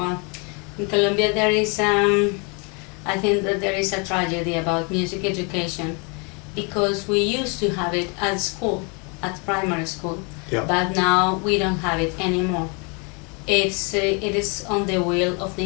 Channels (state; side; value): quieter; right; 33.4 dB